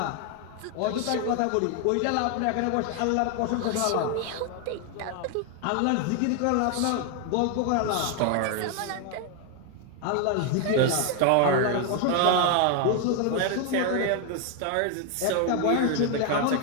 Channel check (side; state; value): both; different; correlation 0.00